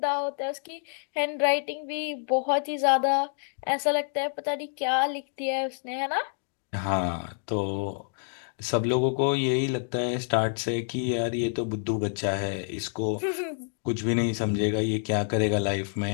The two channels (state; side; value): silent; right; digital silence